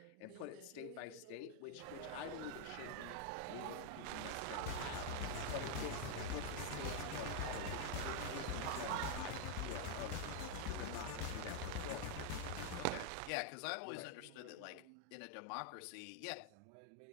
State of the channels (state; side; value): different; both; correlation 0.00